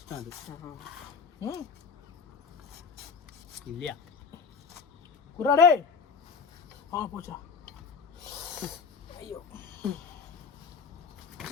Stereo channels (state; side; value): quieter; right; 5.7 dB